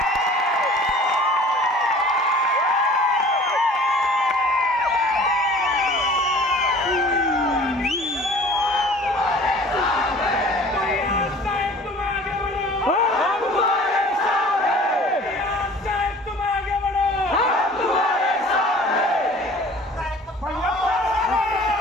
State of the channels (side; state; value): both; normal; correlation 0.47